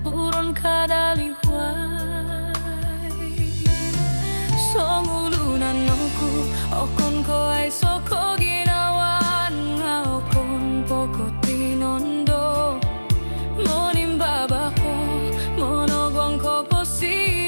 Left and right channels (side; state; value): both; inverted; correlation -1.00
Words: Buron kadaliway Songulunan noku okon ko ay soko ginawan Nga okon poko tinondo Monim baba ko monogwang ko